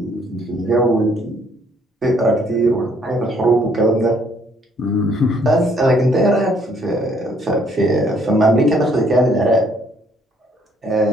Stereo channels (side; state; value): both; normal; correlation 0.65